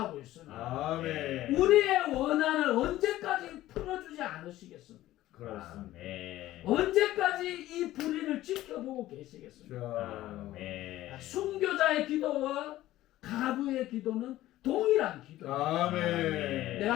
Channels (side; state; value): right; quieter; 15.1 dB